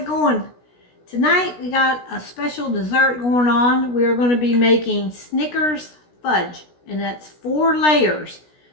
going? Tonight we got a special dessert going on. We are going to be making Snickers fudge, and that's 4 layers.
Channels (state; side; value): late; right; 16 ms